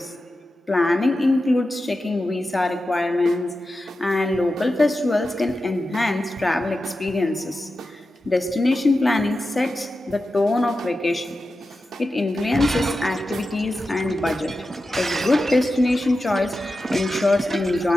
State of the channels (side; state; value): both; normal; correlation 0.92